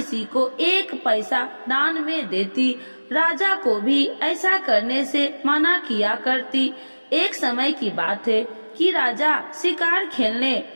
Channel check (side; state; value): both; inverted; correlation -1.00